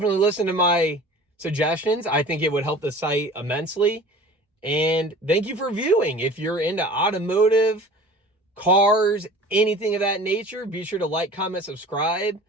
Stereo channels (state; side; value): normal; both; correlation 0.41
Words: listen to my suggestions. I think it would help the site immensely. And thank you for viewing. If you're into automotive, cars, anything of that nature, be sure to like, comment, subscribe.